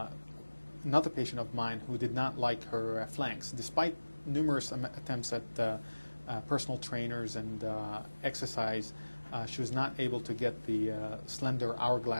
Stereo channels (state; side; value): inverted; both; correlation -1.00